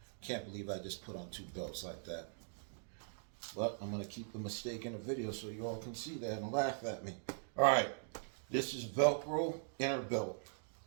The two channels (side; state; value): left; silent; digital silence